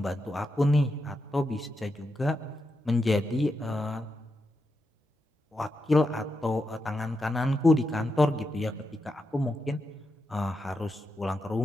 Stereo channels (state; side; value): normal; both; correlation 0.86